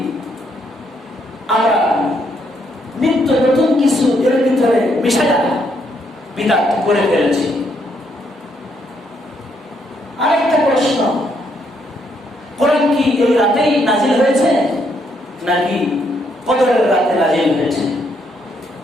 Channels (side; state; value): both; normal; correlation 0.73